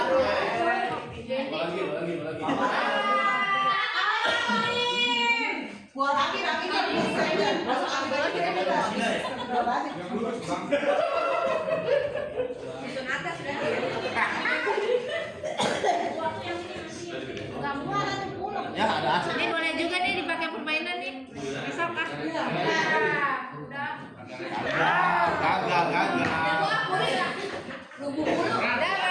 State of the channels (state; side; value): identical; both; correlation 1.00